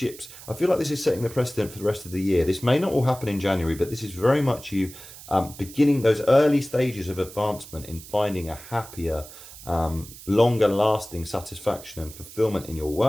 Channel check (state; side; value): noise; right; hiss, 16 dB below the sound